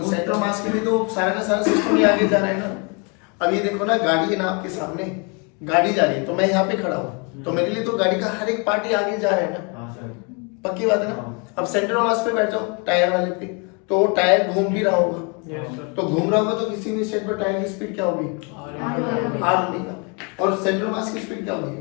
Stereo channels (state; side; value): quieter; right; 32.6 dB